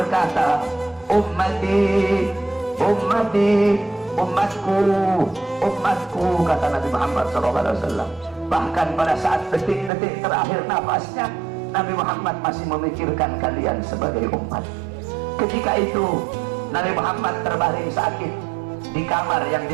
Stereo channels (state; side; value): drops out; left; at 9.9 s